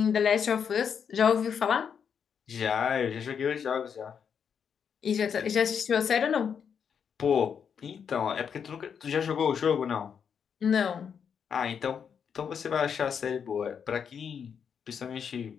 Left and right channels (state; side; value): quieter; right; 7.2 dB